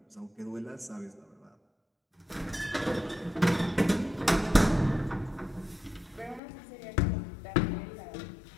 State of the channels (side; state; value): right; drops out; at 6.4 s